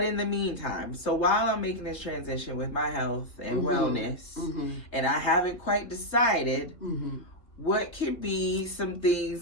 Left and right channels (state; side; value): late; right; 3.1 ms